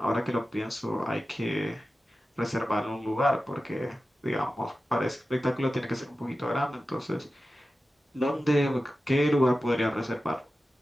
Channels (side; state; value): both; normal; correlation 0.94